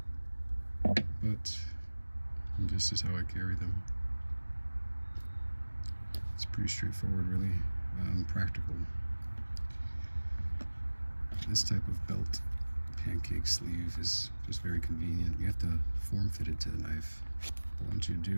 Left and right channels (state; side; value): inverted; both; correlation -1.00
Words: But this is how I carry them. It's pretty straightforward, really. Practical. This type of belt pancake sleeve is just very convenient. You have to form fit it to the knife, but once you